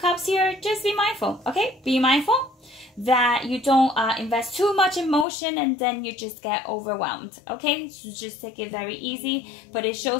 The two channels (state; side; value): drops out; right; at 5.2 s